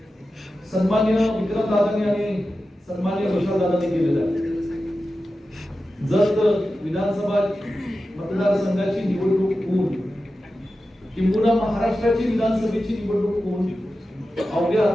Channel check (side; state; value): both; normal; correlation 0.93